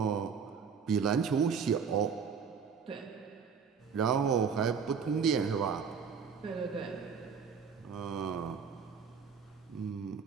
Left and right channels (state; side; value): quieter; left; 6.4 dB